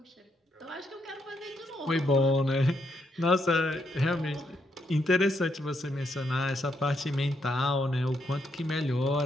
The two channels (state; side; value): normal; both; correlation 0.77